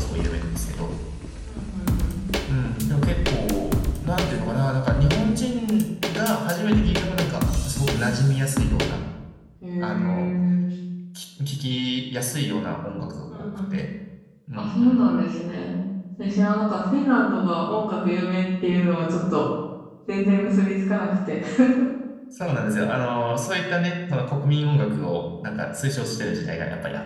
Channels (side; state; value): both; identical; correlation 1.00